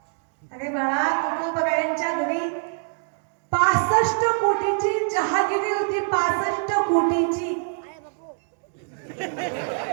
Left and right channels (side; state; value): left; silent; 62 dB below the other